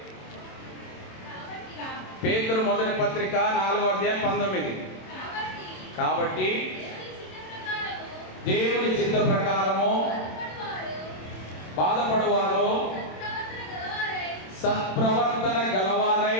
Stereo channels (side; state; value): right; late; 27 ms